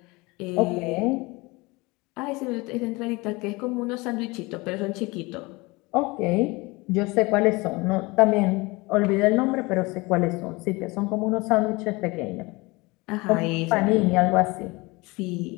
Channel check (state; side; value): quieter; right; 24.1 dB